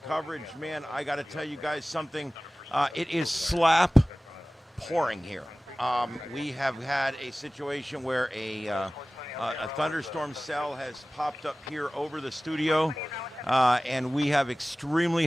Man, I got to tell you guys something. It is slap pouring here. We have had a situation where a thunderstorm cell has popped up here over the studio, and we have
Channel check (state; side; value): normal; both; correlation 0.98